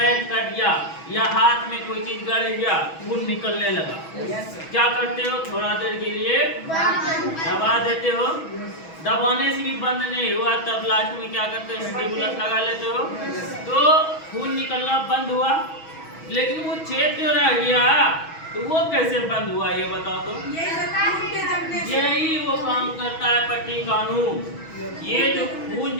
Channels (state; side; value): late; right; 6.2 ms